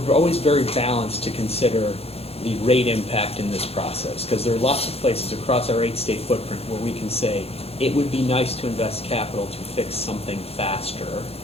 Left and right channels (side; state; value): right; late; 0.29 ms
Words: always very balanced to consider the rate impact in this process, because there are lots of places across our 8-state footprint where we can say it would be nice to invest capital to fix something faster,